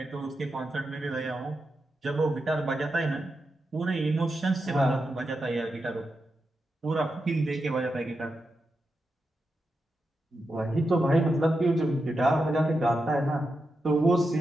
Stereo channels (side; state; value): both; normal; correlation 0.88